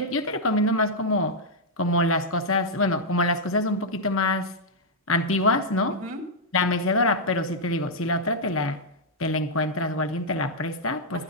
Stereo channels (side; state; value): both; normal; correlation -0.05